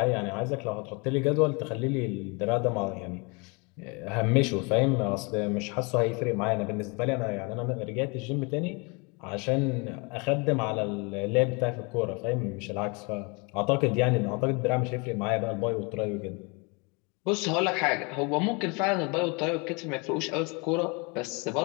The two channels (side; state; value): right; quieter; 30.5 dB